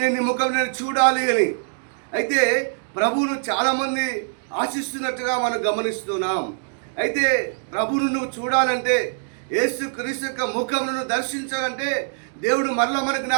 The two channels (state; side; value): silent; left; digital silence